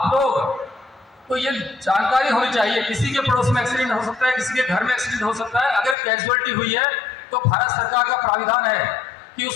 लोग को ये जानकारी होनी चाहिए, किसी के पड़ोस में एक्सीडेंट हो सकता है, किसी के घर में एक्सीडेंट हो सकता है। अगर कैजुअलिटी हुई है तो भारत सरकार का प्राविधान है कि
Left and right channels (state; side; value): drops out; right; at 6.0 s